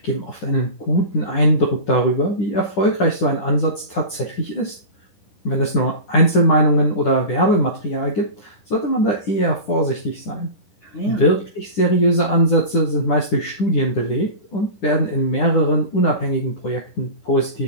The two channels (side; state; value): right; late; 10 ms